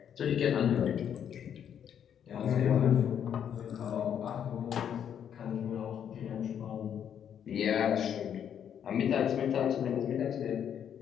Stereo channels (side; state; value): right; quieter; 8.9 dB